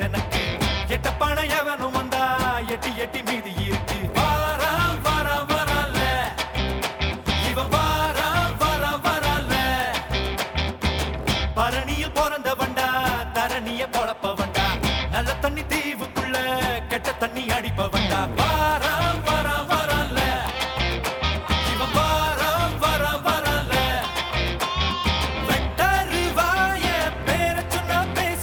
எனக்கு எட்ட பண எவனும் வந்தா எட்டி எட்டி மீதி இருக்கு வாரா வாரா வரல இவன் வாரா வாரா வரல பரணியில் பிறந்த வண்டா தரணிய பொழப்ப வண்டா நல்ல தண்ணி தீவுக்குள்ள கெட்ட தண்ணி அடிப்ப வண்டா வாரா வாரா வரல இவன் வாரா வாரா வரல வெட்டரு வாய பேர சொன்னா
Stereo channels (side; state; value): both; identical; correlation 1.00